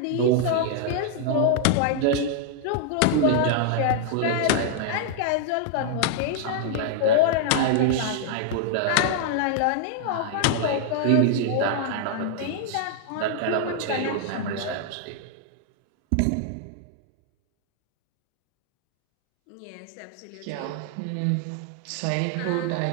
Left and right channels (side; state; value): both; different; correlation -0.01